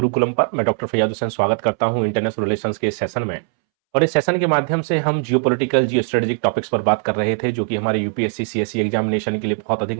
पर। मैं डॉक्टर फैयाद हुसैन स्वागत करता हूं इंटरनेशनल रिलेशंस के इस सेशन में। और इस सेशन के माध्यम से हम जियोपॉलिटिकल जियो स्ट्रेटेजिक टॉपिक्स पर बात कर रहे थे जो कि हमारे यूपीएससी सीएससी एग्जामिनेशन के लिए बहुत अधिक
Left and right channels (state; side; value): silent; left; 66 dB below the other